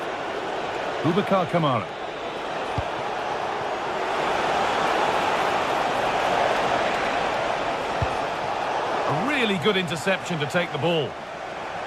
Boubacar Kamara. A really good interception to take the ball.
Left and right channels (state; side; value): identical; both; correlation 1.00